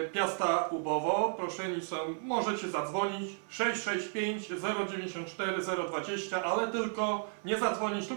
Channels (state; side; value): silent; left; 56 dB below the other